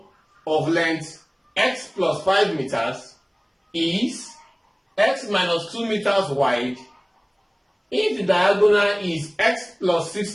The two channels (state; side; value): identical; both; correlation 1.00